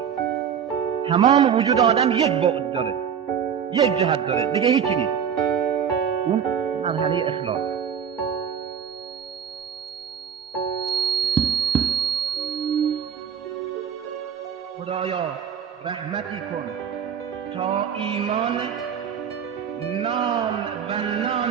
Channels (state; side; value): quieter; left; 7.9 dB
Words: تمام وجود آدم یک بعد داره، یک جهت داره، دیگه هیچی نیست. اون مرحله اخلاص. خدایا رحمتی کن تا ایمان نام و